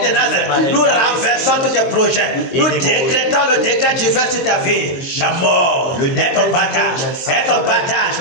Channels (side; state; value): right; late; 23 ms